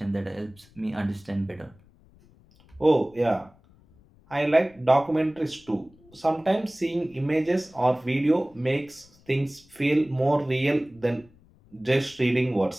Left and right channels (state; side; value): noise; left; rumble, 28 dB below the sound